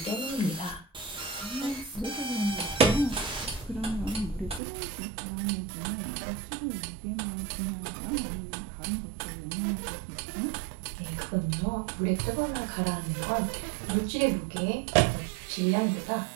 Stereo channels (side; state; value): left; drops out; at 4.6 s